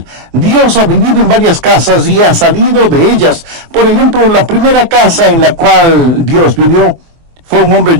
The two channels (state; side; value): late; left; 24 ms